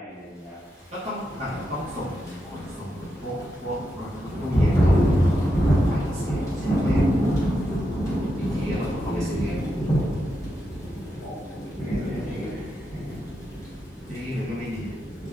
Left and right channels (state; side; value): normal; both; correlation 0.85